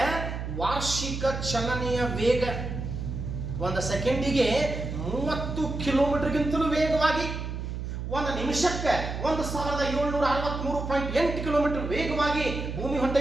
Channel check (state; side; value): noise; right; hum, 5 dB below the sound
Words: ವಾರ್ಷಿಕ ಚಲನೆಯ ವೇಗ 1 ಸೆಕೆಂಡಿಗೆ 30 ಕಿಲೋಮೀಟರ್ಗಿಂತಲೂ ವೇಗವಾಗಿ, 1 ನಿಮಿಷಕ್ಕೆ 1763.8 ಕಿಲೋಮೀಟರ್ ವೇಗವಾಗಿ ಭೂಮಿ